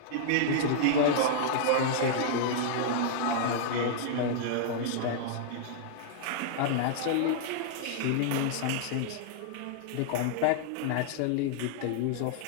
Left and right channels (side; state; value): both; different; correlation -0.01